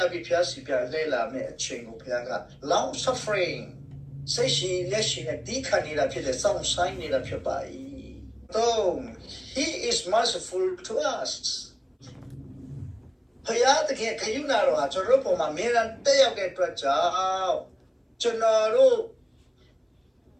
ပြီးဘုရားစီပြန်လှည့်လာမယ့်အချိန်ကိုဘုရားက long suffering စိတ်ရှိလက်ရှိနဲ့ဒီခံနေတာဖြစ်တယ်စောင့်ဆိုင်နေတာဖြစ်ပါ၏တော့ he is merciful to us ဘုရားတကယ်ခယူနာတော်ဟာကျွန်တော်တို့ပုံမှာအမြဲတမ်းတက်ရောက်တဲ့အတွက်ကြောင့်ကျွန်တော်တို့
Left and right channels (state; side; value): identical; both; correlation 1.00